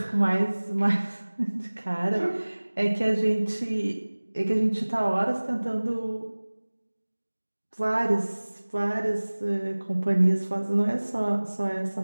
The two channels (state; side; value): inverted; both; correlation -1.00